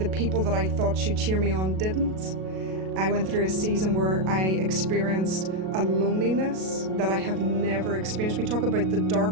people that I thought should cheer me on didn't. I went through a season where I experienced a loneliness that I have never experienced. We talk about the dark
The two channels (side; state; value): left; late; 37 ms